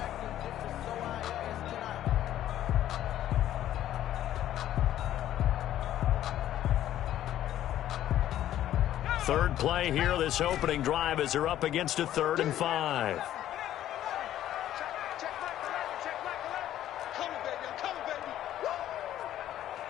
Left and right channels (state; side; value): quieter; right; 12.3 dB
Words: Third play here, this opening drive as they're up against a 3rd and 5.